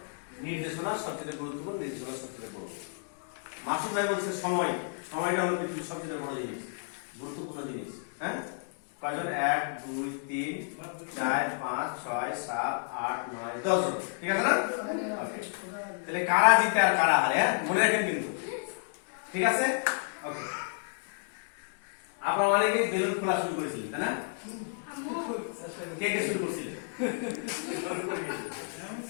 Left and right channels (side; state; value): right; silent; digital silence